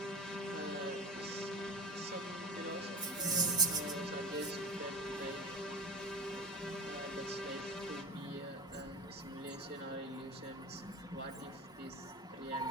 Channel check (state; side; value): normal; both; correlation 0.30